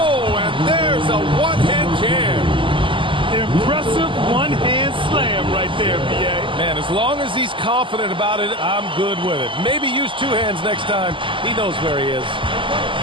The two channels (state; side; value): late; left; 0.25 ms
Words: and there's a one-hand jam. Impressive one-hand slam right there, BA. Man, as As long as he's confident about it, I'm good with it. Maybe use two hands next time. He knows where he is.